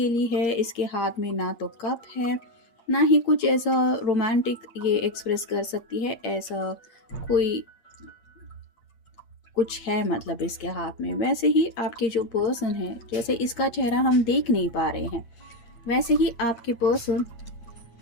है, इसके हाथ में ना तो कप है ना ही कुछ ऐसा रोमांटिक ये एक्सप्रेस कर सकती है, ऐसा कोई कुछ है मतलब इसके हाथ में। वैसे ही आपके जो पर्सन है, जैसे इसका चेहरा हम देख नहीं पा रहे हैं, वैसे ही आपके पर्सन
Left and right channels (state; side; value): late; right; 8.6 ms